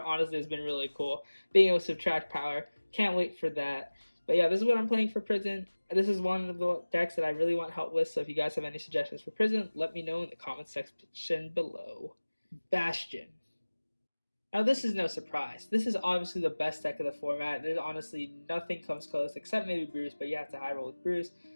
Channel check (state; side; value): inverted; both; correlation -1.00